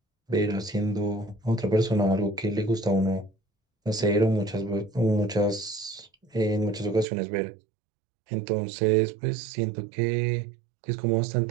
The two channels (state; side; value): drops out; left; at 7.1 s